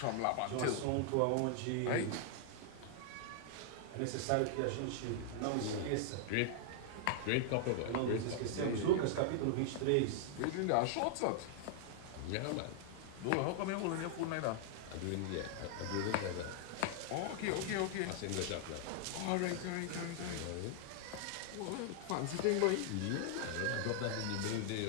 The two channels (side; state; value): both; different; correlation 0.00